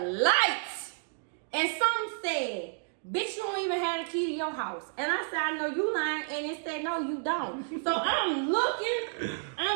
lights. And some said, bitch, you don't even have the key to your house. And I said, I know you lying. And it said, no, you don't. So I'm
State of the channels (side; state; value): left; silent; digital silence